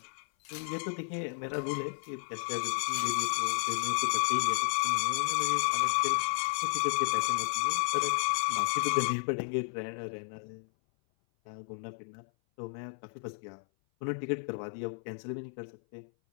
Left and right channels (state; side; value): silent; right; 56 dB below the other